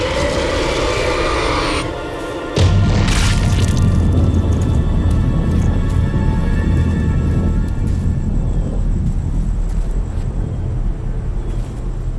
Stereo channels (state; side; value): identical; both; correlation 1.00